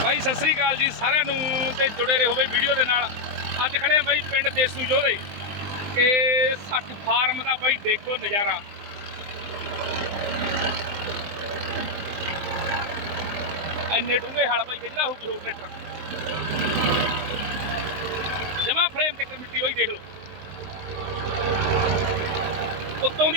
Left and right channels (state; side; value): late; left; 19 ms